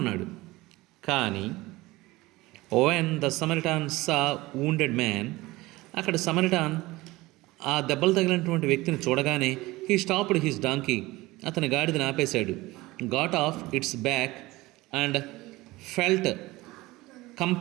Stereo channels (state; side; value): quieter; left; 20.0 dB